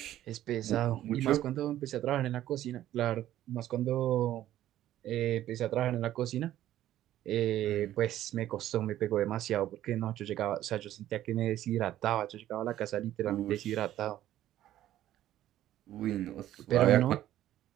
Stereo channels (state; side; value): quieter; left; 13.0 dB